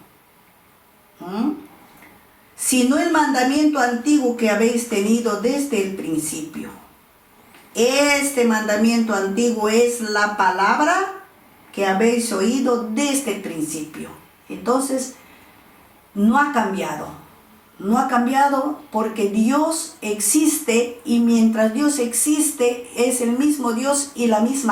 sino el mandamiento antiguo que habéis tenido desde el principio. Este mandamiento antiguo es la palabra que habéis oído desde el principio. Entonces, no ha cambiado. No ha cambiado porque Dios existe, y mientras Dios existe es el mismo Dios y la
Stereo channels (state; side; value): identical; both; correlation 1.00